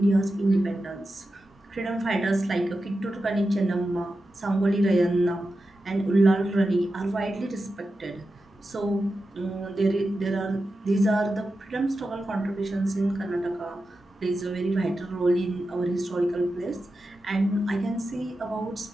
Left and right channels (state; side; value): normal; both; correlation 0.91